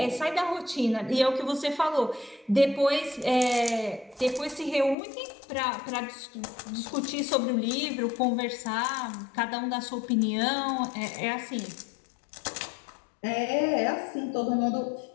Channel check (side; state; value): right; drops out; at 5.0 s